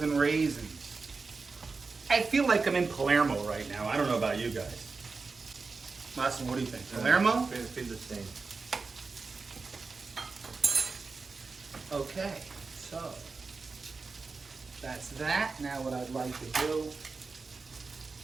raisins. I feel like I'm in Palermo right now. I don't know about you guys. Massimo, what do you think? Palermo? Feel the same. Okay, so that's that. Now what I'd like to do,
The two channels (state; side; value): quieter; left; 4.3 dB